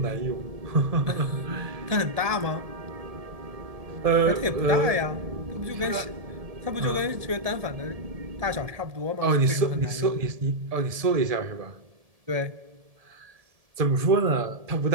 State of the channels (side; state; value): left; late; 1.7 ms